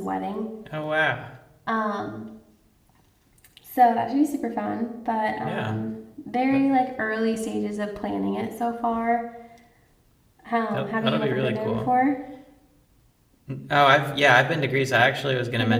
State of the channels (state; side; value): identical; both; correlation 1.00